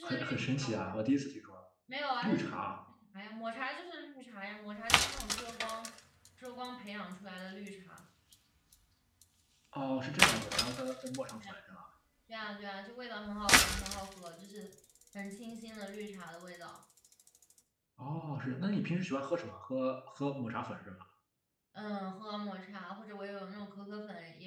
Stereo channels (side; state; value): both; identical; correlation 1.00